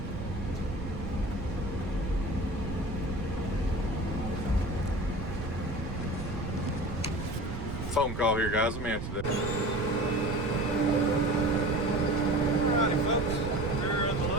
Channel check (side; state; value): right; noise; rumble, 6 dB below the sound